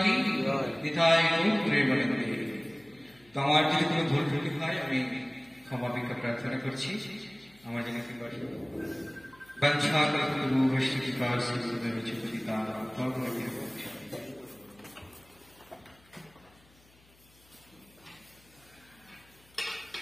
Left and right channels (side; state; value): left; noise; hum, 29 dB below the sound